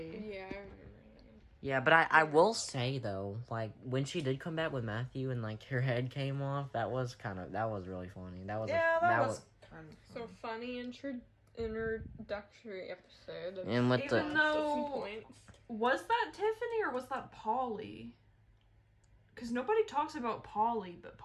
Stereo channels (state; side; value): identical; both; correlation 1.00